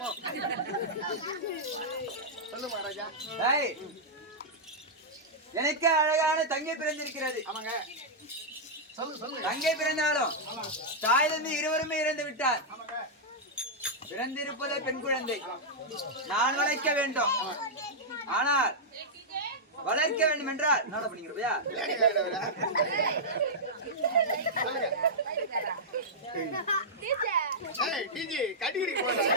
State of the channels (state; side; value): normal; both; correlation -0.08